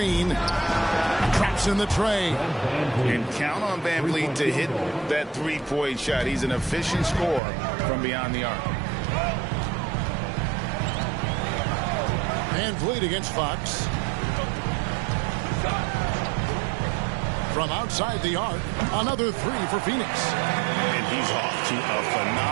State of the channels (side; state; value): left; drops out; at 7.4 s